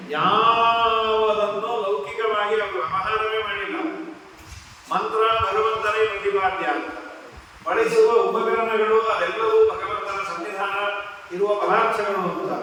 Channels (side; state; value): both; identical; correlation 1.00